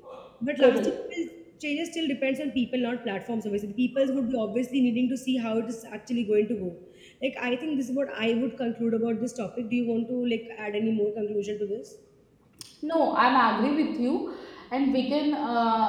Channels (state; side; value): identical; both; correlation 1.00